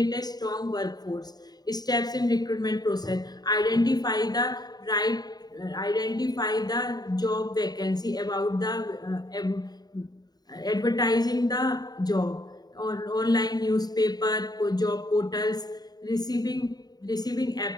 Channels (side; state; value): right; late; 0.19 ms